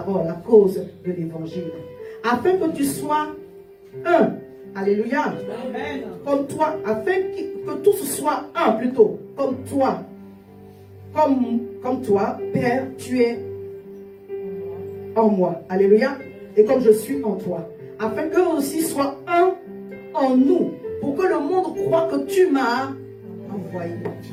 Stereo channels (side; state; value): both; identical; correlation 1.00